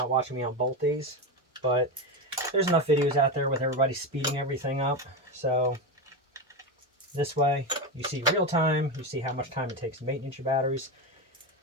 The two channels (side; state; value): both; normal; correlation 0.15